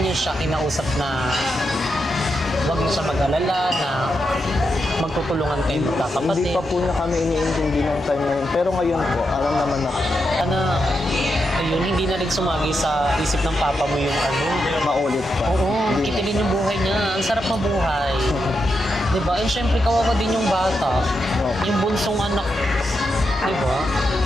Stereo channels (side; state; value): both; normal; correlation 0.85